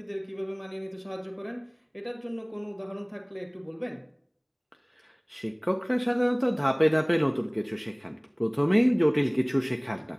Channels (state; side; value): identical; both; correlation 1.00